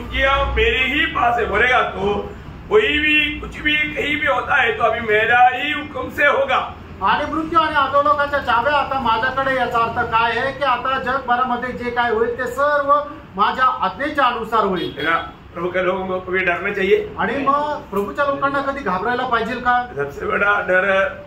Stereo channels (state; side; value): identical; both; correlation 1.00